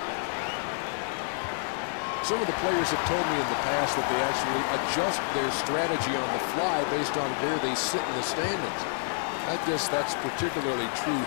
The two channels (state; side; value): silent; right; digital silence